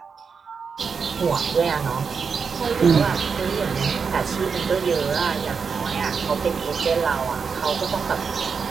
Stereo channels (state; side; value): quieter; left; 5.7 dB